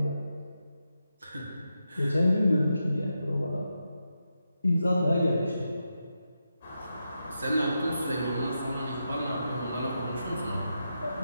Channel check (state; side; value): inverted; both; correlation -0.87